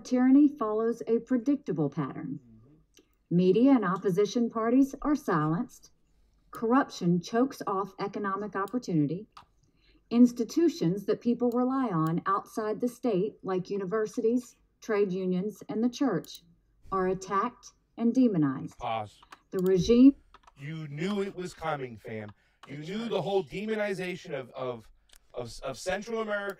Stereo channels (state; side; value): identical; both; correlation 1.00